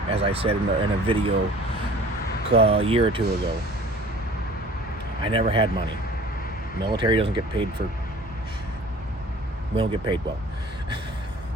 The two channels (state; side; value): normal; both; correlation 0.47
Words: as I said in a video a year or two ago, I never had money. Military doesn't get paid for, we don't get paid well.